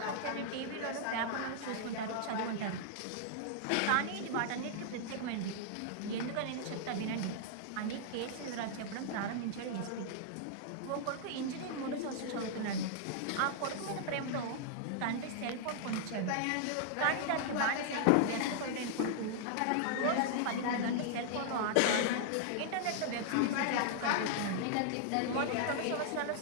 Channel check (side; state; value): both; different; correlation -0.01